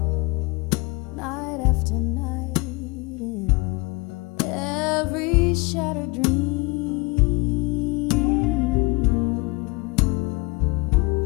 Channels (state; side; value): quieter; right; 26.4 dB